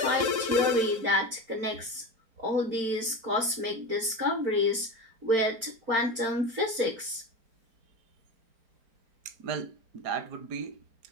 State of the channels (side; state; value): left; late; 4.4 ms